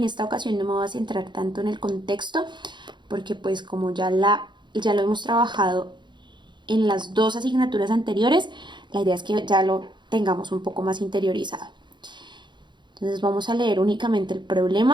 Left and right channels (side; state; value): left; late; 0.22 ms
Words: esta ocasión no me voy a centrar tanto en el contexto, porque pues como ya lo hemos trabajado en las dos asignaturas anteriores, la idea es que ya lo tengamos un poco más interiorizado. Entonces vamos a leer únicamente el